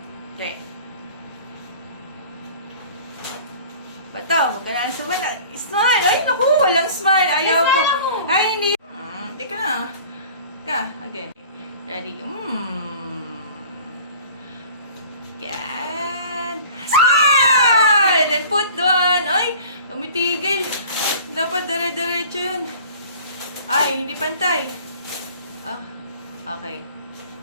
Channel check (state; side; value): inverted; both; correlation -0.45